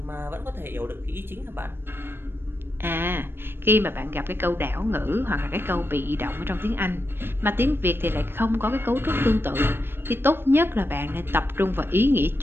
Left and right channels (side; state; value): left; late; 0.10 ms